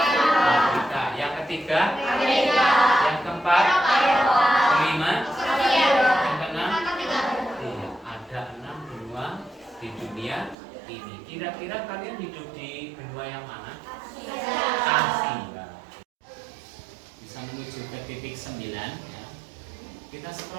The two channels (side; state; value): left; drops out; at 10.6 s